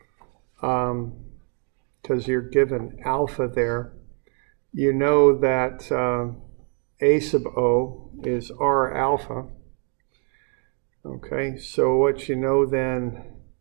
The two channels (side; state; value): left; quieter; 38.2 dB